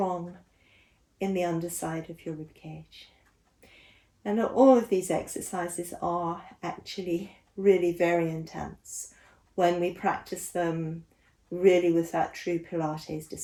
in the underside of your rib cage. And all of these exercises are actually really very intense when we practice them really with that true Pilates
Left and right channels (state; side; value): identical; both; correlation 1.00